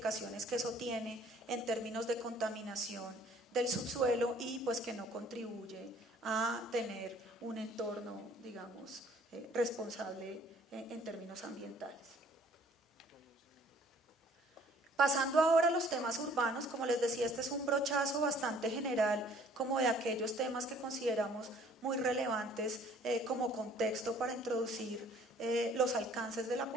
que eso tiene en términos de contaminación del subsuelo y pues que no contribuye a tener un entorno, digamos, responsable en términos ambientales. Pasando ahora a los temas urbanos, como les decía, este es un brochazo bastante general como de aquellos temas que consideramos muy relevantes como contexto para introducir los alcances de la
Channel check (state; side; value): normal; both; correlation 0.57